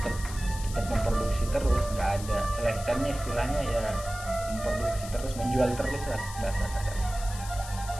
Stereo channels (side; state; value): left; noise; hiss, 13 dB below the sound